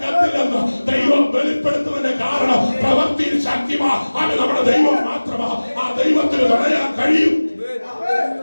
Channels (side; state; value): both; inverted; correlation -1.00